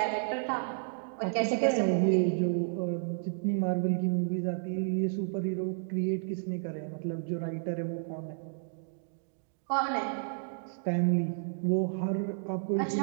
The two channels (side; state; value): left; silent; digital silence